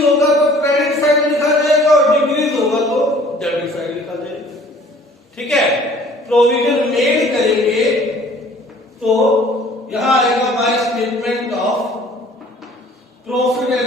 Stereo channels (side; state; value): both; normal; correlation 0.52